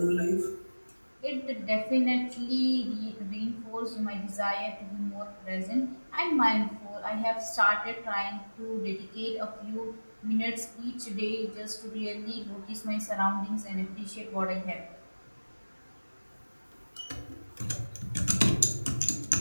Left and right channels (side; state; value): both; inverted; correlation -1.00